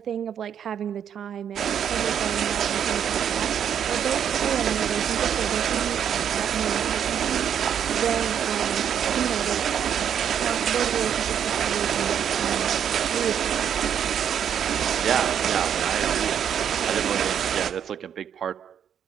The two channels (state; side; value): quieter; left; 8.7 dB